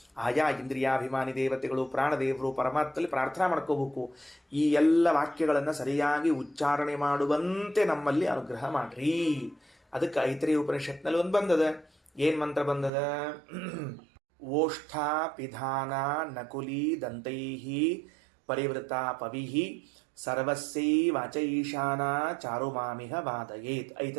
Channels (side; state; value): left; drops out; at 12.9 s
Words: ಆಯಾ ಇಂದ್ರಿಯಾಭಿಮಾನಿ ದೇವತೆಗಳು, ಪ್ರಾಣದೇವರು, ಪರಮಾತ್ಮಲ್ಲಿ ಪ್ರಾರ್ಥನಾ ಮಾಡ್ಕೋಬೇಕು. ಈ ಎಲ್ಲ ವಾಕ್ಯಗಳನ್ನು ಸರಿಯಾಗಿ ಉಚ್ಚಾರಣೆ ಮಾಡುವಂತೆ ನಮ್ಮಲ್ಲಿ ಅನುಗ್ರಹ ಮಾಡ್ರಿ. ಅದಕ್ಕೆ ಐತರೇಯ ಉಪನಿಷತ್ನಲ್ಲಿ ಒಂದು ಬಂದದ. ಏನು ಮಂತ್ರ ಬಂದದ? ಓಷ್ಠ ಪಿಧಾನ ನಕುಲಿ ದಂತೈಹಿ ಪರಿವೃತ ಪವಿಹಿ ಸರ್ವಸ್ಸೈ ವಾಚೈಶಾನ ಚಾರುಮಾಮಿಹ ವಾದಯೇತ್.